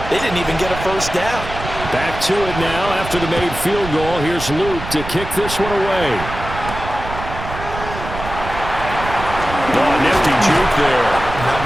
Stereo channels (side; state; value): right; noise; rumble, 9 dB below the sound